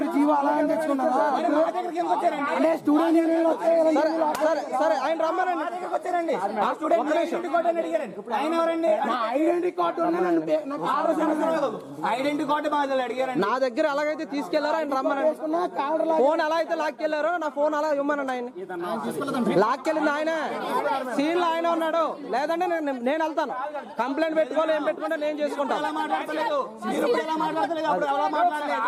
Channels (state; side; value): identical; both; correlation 1.00